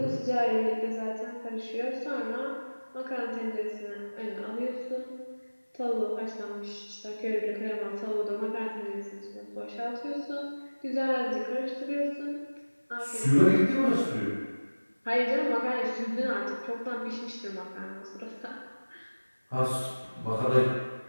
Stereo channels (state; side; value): inverted; both; correlation -1.00